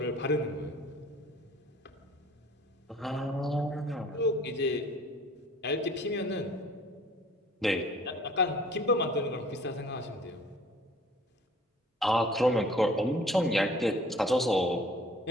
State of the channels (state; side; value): normal; both; correlation 0.52